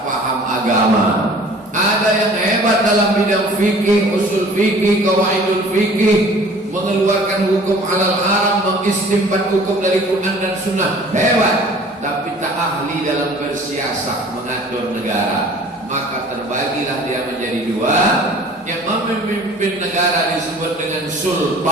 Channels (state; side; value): normal; both; correlation 0.48